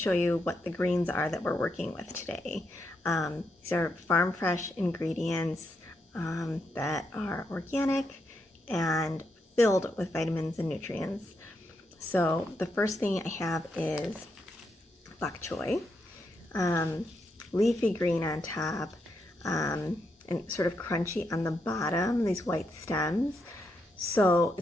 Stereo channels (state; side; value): normal; both; correlation 0.81